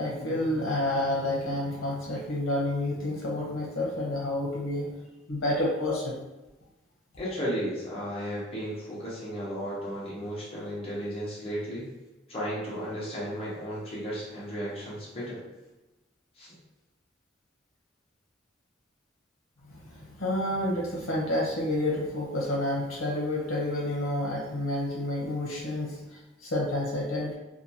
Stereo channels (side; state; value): both; normal; correlation 0.36